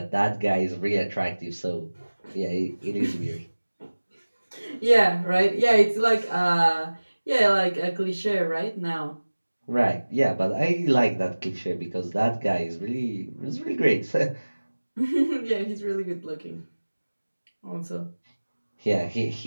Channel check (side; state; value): both; inverted; correlation -1.00